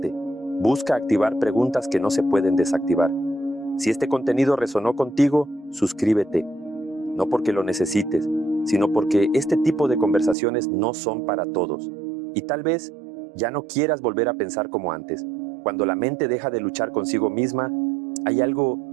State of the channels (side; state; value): left; drops out; at 10.4 s